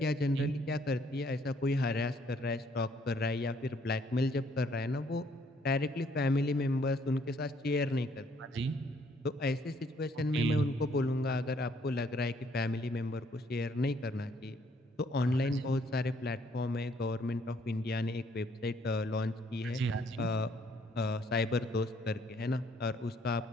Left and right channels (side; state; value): both; normal; correlation 0.66